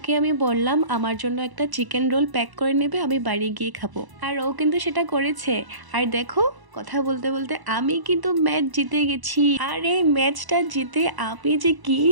আমি বললাম আমার জন্য একটা চিকেন রোল প্যাক করে নেবে, আমি বাড়ি গিয়ে খাবো। আর ও কিন্তু সেটা করেছে। আর দেখো, কথা বলতে বলতে আমি কিন্তু ম্যাচ জিতে গেছি। আর এই ম্যাচটা জিতে আমি যে কি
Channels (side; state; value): left; late; 1.0 ms